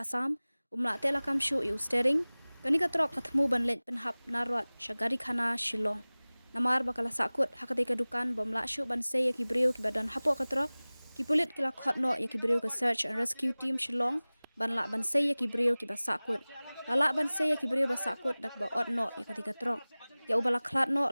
umla telakam shu yu steering kani ka Trok kathmu banlet penhap narwat shagari khana Shillong Namar bakala Sakut hakati ka dukan bomla shu bansay ya ki Briew ki badan Hapoh ka Trok ki pulit kila khotno ya ki Briew ka search and rescue team Shillong banla bansay ya ki Briew ki ba Sakut lala bansay ya ki Briew ba Sakut dak ba otno ya katika Trok ya ubala klatno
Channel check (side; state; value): both; inverted; correlation -1.00